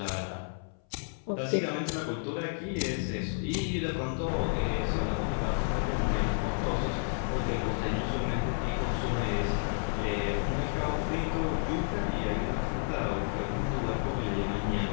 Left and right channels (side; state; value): right; silent; 57 dB below the other